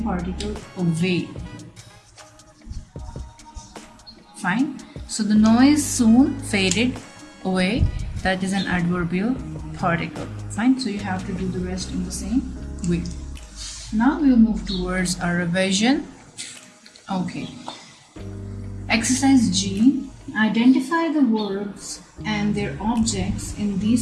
particle away. Fine. So the noise soon faded away. That is an adverbial particle. Fine. So you have to do the rest in the same way. Now we'll move towards our revision. Okay. Exercise G. Identify the verbs and their objects in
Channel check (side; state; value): both; identical; correlation 1.00